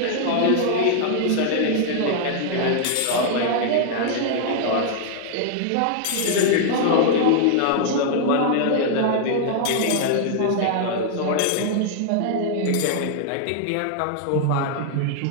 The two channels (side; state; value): both; different; correlation 0.00